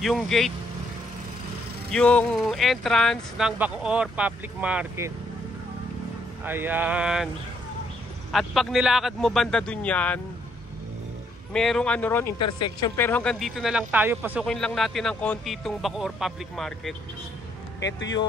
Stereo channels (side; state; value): both; normal; correlation 0.71